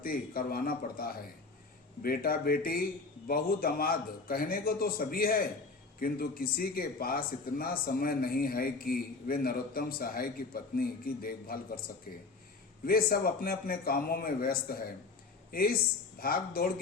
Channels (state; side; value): quieter; right; 4.0 dB